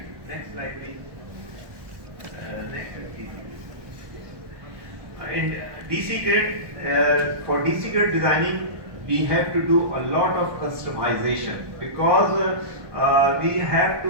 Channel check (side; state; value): left; late; 1.2 ms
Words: Next slide, please. In DC grid, for DC grid designing, we have to do a lot of customization because we have to